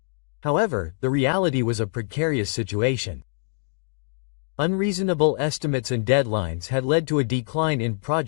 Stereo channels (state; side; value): silent; right; digital silence